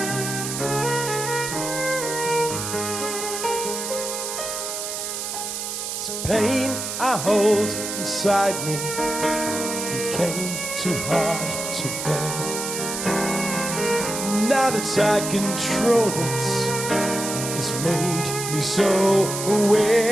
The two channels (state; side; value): noise; right; hiss, 4 dB below the sound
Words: Pain I hold inside me became too hard to bear. Now that I control it, it's made me so